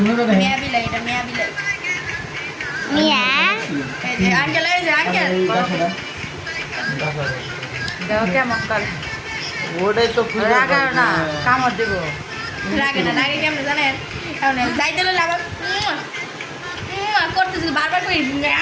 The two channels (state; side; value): identical; both; correlation 1.00